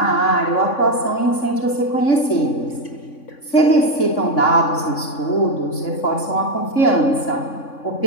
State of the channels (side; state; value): right; late; 3.6 ms